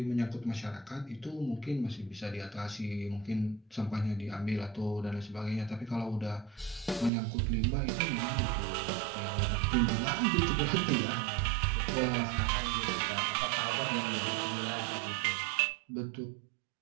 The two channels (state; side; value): drops out; left; at 7.1 s